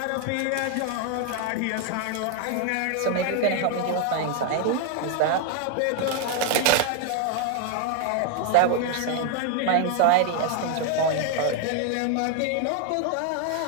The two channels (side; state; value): both; different; correlation 0.01